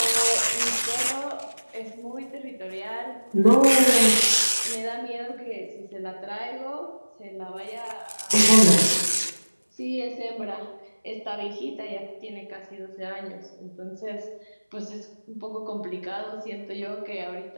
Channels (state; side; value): inverted; both; correlation -1.00